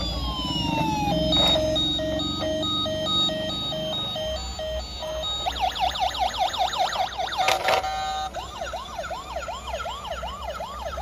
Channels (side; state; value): both; identical; correlation 1.00